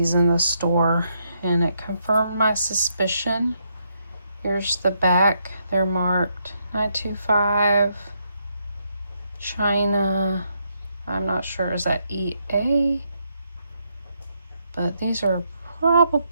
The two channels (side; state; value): both; inverted; correlation -0.77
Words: in the store, and it confirmed my suspicion. Here's the back. They're marked 925 China. I'm not sure, is that EA? But these are